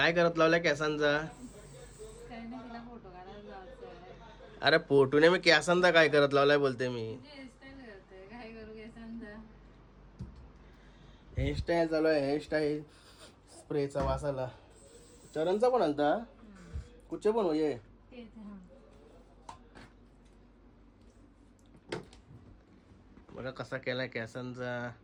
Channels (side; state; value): both; identical; correlation 1.00